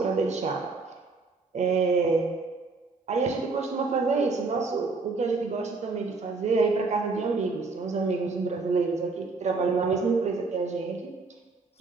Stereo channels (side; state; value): left; quieter; 4.0 dB